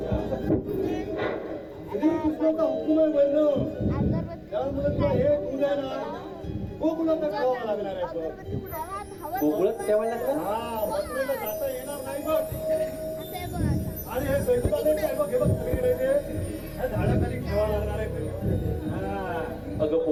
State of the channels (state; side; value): identical; both; correlation 1.00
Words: श्रीकृष्णाचा हुकूम आहे म्हणणं. त्यामुळे तुला हे दूध आहे ना गोकुळातच ठेवावं लागणार आहे बघ. गोकुळात ठेवायला लागला? हा मथुरेला जाता येणार नाही बघ. आणि हे स्वयंपाक आहे बघ हे बघ सगळीकडे ते ह्या झाडाखाली ठेवावं लागणार आहे हा. अगं